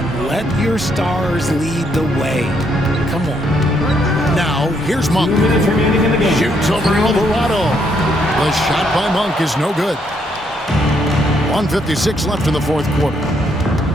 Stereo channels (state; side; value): normal; both; correlation 0.73